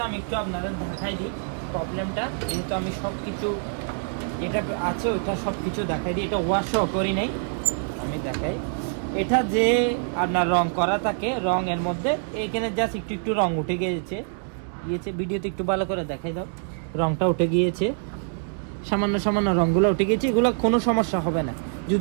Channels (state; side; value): silent; left; digital silence